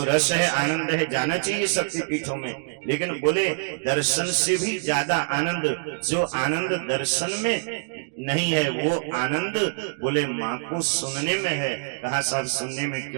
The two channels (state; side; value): silent; left; digital silence